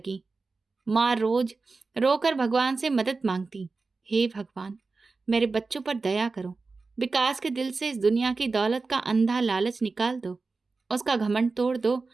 माँ रोज रोकर भगवान से मदद मांगती, हे भगवान, मेरे बच्चों पर दया करो। विकास के दिल से इस दुनिया की दौलत का अंधा लालच निकाल दो, उसका घमंड तोड़ दो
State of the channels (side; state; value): left; quieter; 4.0 dB